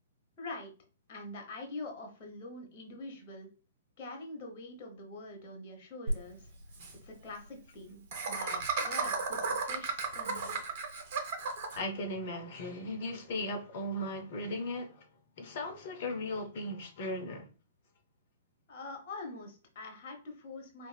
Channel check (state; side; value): inverted; both; correlation -0.43